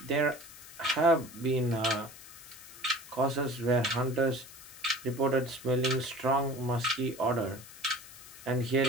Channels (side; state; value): left; noise; hiss, 17 dB below the sound